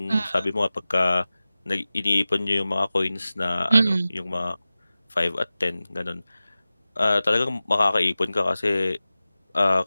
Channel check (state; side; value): inverted; both; correlation -0.96